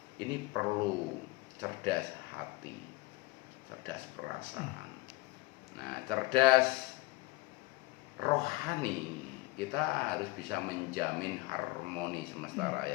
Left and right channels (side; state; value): right; quieter; 22.0 dB